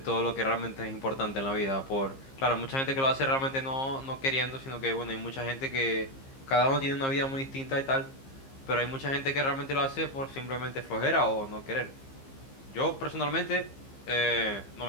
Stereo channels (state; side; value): late; right; 15 ms